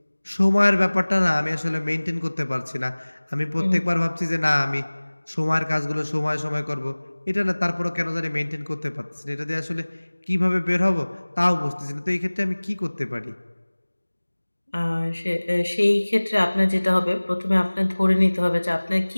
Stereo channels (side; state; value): both; inverted; correlation -1.00